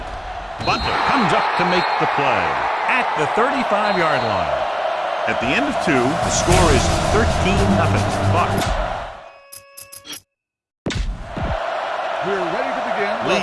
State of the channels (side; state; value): both; identical; correlation 1.00